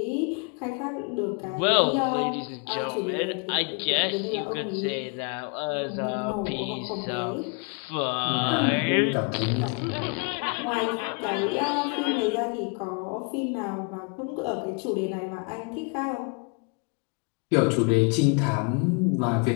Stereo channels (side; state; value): right; quieter; 34.8 dB